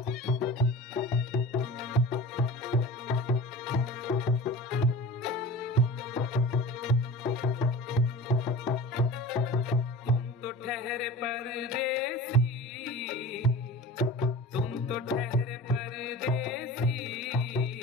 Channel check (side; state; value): both; normal; correlation 0.35